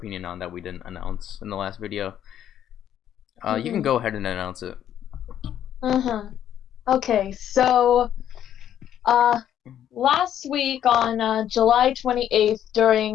on that we didn't announce in the last video. You can hmm go ahead and announce it. hmm Okay, so uh last week on July 28th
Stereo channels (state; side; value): quieter; right; 10.5 dB